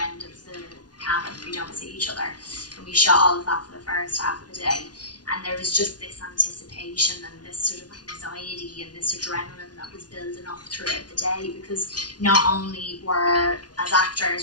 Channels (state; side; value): late; right; 0.70 ms